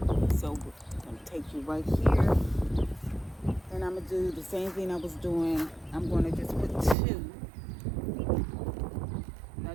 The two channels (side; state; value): left; drops out; at 7.0 s